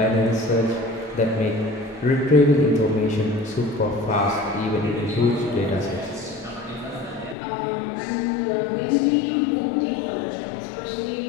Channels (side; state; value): right; drops out; at 7.4 s